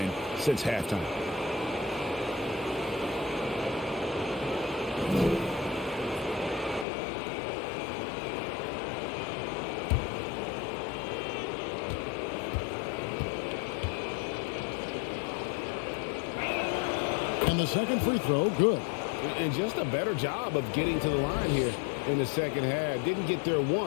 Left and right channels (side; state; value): right; drops out; at 6.9 s